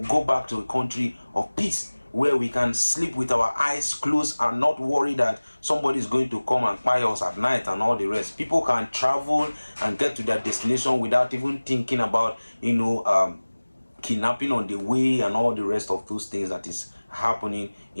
go back to a country of peace, where we can sleep with our eyes closed and not worry that somebody is going to come and spy us at night and all the rest. People can travel and get to their destination without even thinking about, kidnapping on the way and all the rest of those things that is happening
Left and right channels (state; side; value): inverted; both; correlation -1.00